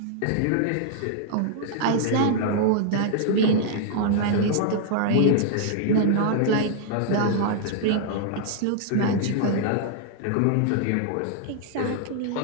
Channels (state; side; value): different; both; correlation -0.01